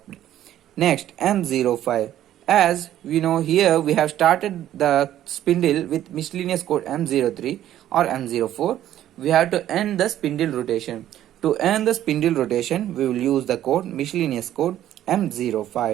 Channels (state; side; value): quieter; left; 12.2 dB